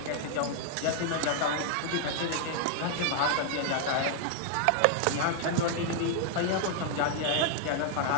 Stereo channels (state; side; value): different; both; correlation 0.00